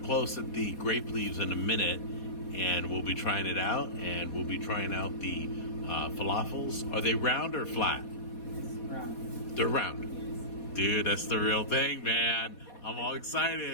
close at the grape leaves in a minute, and we'll be trying it out, and we'll be trying out the falafels. Are they round or flat? It's round. They're round. Yes. Dude, that's the real thing, man. I'm all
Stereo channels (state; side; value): late; right; 4.2 ms